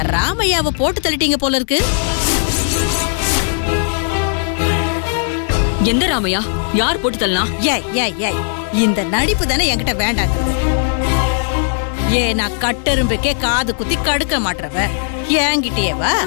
ராமையாவை போட்டு தள்ளிட்டீங்க போல இருக்கு. எந்த ராமையா? யார் போட்டு தள்ளலாம்? ஏய் ஏய் ஏய், இந்த நடிப்பு தானே என்கிட்ட வேண்டாங்கிறது. நான் கட்டெரும்புக்கே காது குத்தி கடுக்க மாட்டறவ என்கிட்டயேவா?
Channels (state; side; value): silent; right; 68 dB below the other